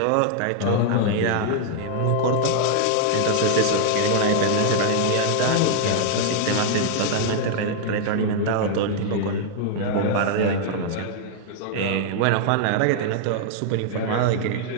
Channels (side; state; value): both; different; correlation -0.01